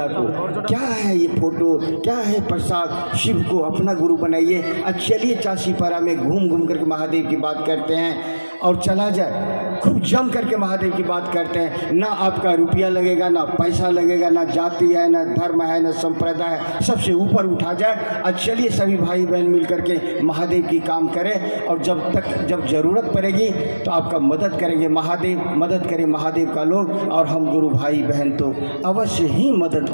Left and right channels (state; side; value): inverted; both; correlation -1.00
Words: को। क्या है ये फोटो, क्या है प्रसाद, शिव को अपना गुरु बनाइए। अब चलिए चासीपारा में घूम घूम करके महादेव की बात करते हैं और चला जाए, खूब जम करके महादेव की बात करते हैं। ना आपका रुपया लगेगा, ना पैसा लगेगा, ना जाति है, ना धर्म है, ना संप्रदाय है, सबसे ऊपर उठा जाए। और चलिए सभी भाई बहन मिल करके महादेव की काम करें, और जब ज़रूरत पड़ेगी तो आपका मदद करेंगे महादेव, मदद करें महादेव का लोग, और हम गुरु भाई बहन तो अवश्य ही मदद